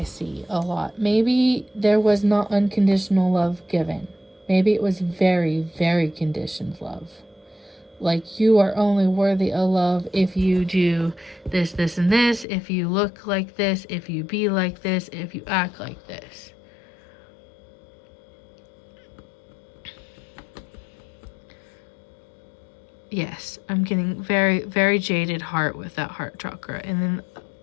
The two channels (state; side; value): drops out; right; at 12.5 s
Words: see a lot, maybe there was not unconditional love given. Maybe it was very, very conditioned love. Like, you are only worthy of love if you do this, this, and this, if you look like this, if you be like this, if you act like this. Yes, I'm getting very, very jaded heart with that heart chakra. And then,